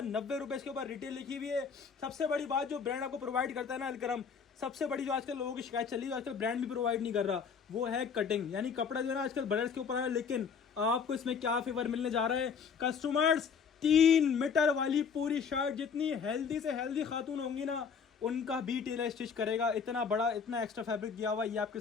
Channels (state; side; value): quieter; right; 6.3 dB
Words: रुपए इसके ऊपर रिटेल लिखी हुई है। सबसे बड़ी बात जो ब्रांड आपको प्रोवाइड करता है ना अल करम, सबसे बड़ी जो आजकल लोगों की शिकायत चल रही है, आजकल ब्रांड भी प्रोवाइड नहीं कर रहा, वो है कटिंग। यानी कपड़ा जो है ना आजकल ब्रदर्स के ऊपर है, लेकिन आपको इसमें क्या फेवर मिलने जा रहा है कस्टमर्स, 3 मीटर वाली पूरी शर्ट। जितनी हेल्दी से हेल्दी खातून होंगी ना उनका भी टेलर स्टिच करेगा। इतना बड़ा, इतना एक्स्ट्रा फैब्रिक दिया हुआ। ये आपके